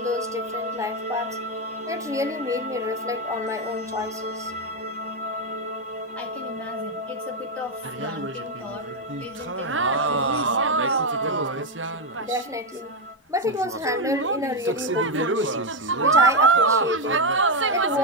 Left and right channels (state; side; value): normal; both; correlation 0.06